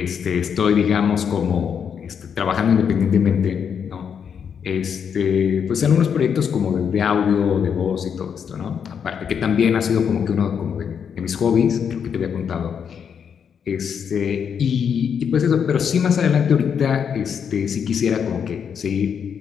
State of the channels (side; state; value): right; quieter; 7.4 dB